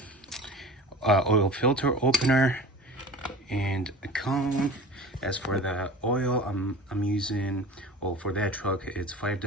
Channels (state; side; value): normal; both; correlation 0.37